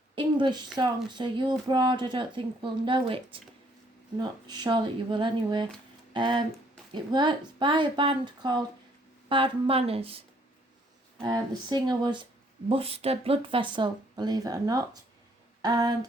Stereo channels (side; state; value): both; normal; correlation 0.65